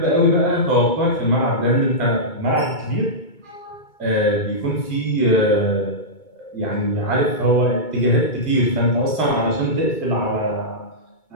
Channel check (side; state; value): right; late; 2.2 ms